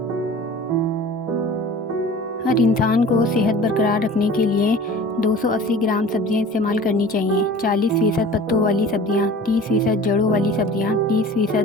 हर इंसान को सेहत बरकरार रखने के लिए 280 ग्राम सब्जियां इस्तेमाल करनी चाहिए। 40% पत्तों वाली सब्जियां, 30% जड़ों वाली सब्जियां,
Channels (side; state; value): both; normal; correlation 0.42